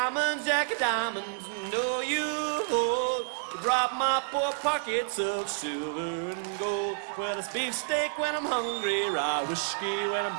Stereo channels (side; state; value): left; silent; digital silence